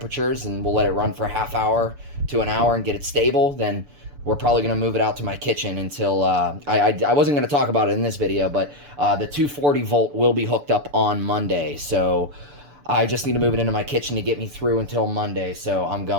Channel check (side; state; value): left; late; 7.0 ms